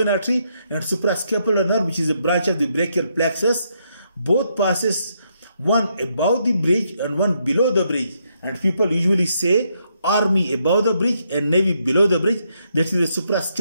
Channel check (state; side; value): inverted; both; correlation -0.77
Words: artery, and suprascapular nerve, which is a branch of the brachial plexus, both passes, one above the bridge and one below the bridge. And people usually say Army above the bridge and Navy below the bridge. That is the